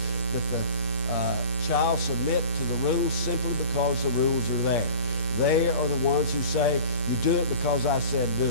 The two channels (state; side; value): late; right; 8.5 ms